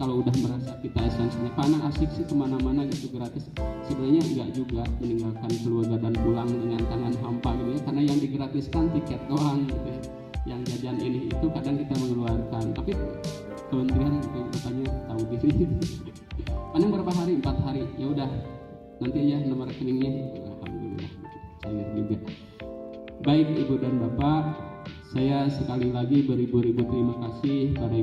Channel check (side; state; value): both; identical; correlation 1.00